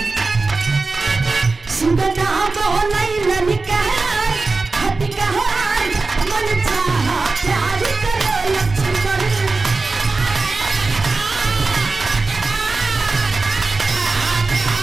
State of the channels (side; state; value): left; quieter; 3.7 dB